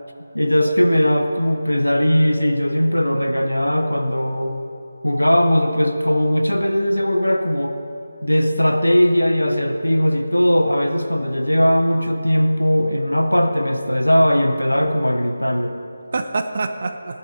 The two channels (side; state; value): both; inverted; correlation -0.98